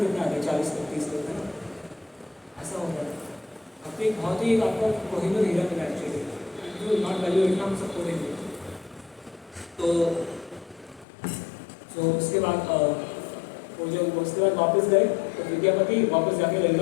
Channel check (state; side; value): drops out; right; at 11.1 s